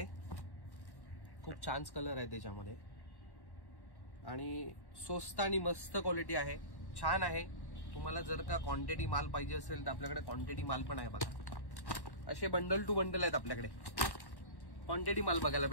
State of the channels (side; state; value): right; late; 1.1 ms